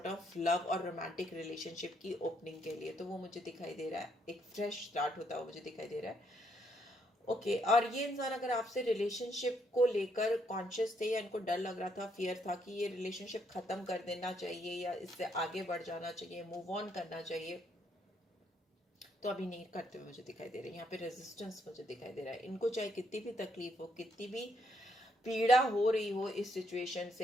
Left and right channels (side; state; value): both; normal; correlation 0.73